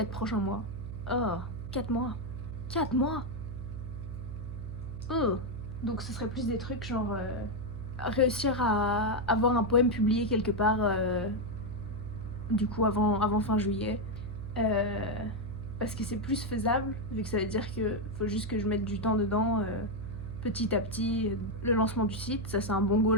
prochains mois. Oh, 4 mois. 4 mois. Oh. Donc ce serait plus des trucs genre réussir à avoir un poème publié quelque part du coup avant fin juillet. Parce que c'est plus faisable, vu que ça veut dire que faut juste que je mette du temps dedans petit à petit. Le lancement du site, ça c'est un bon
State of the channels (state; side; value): noise; right; hum, 8 dB below the sound